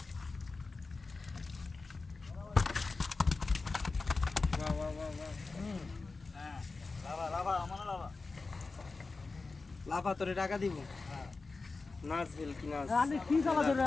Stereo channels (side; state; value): right; quieter; 3.9 dB